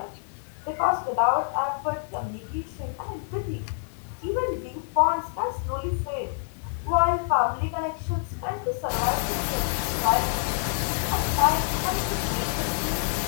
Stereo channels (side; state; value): right; silent; digital silence